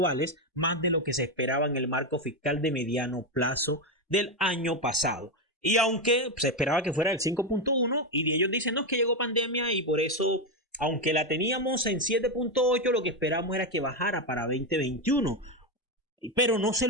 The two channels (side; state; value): both; normal; correlation 0.09